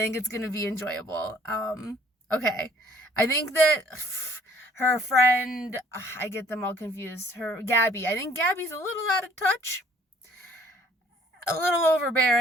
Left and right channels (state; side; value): normal; both; correlation 0.59